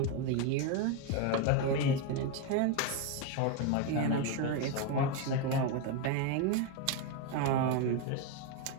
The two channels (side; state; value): both; different; correlation 0.02